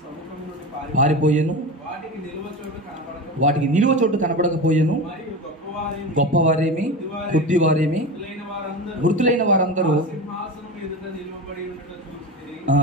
సముఖము నుండి పారిపోయెను, వాటికి నిలువ చోటు కనపడకపోయెను. మరియు గొప్పవారేమి కొద్దివారేమి మృతులైన వారందరూ సింహాసనం ఎదుట నిలువబడి ఉన్నట్లు చూచితిని.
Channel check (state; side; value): normal; both; correlation 0.25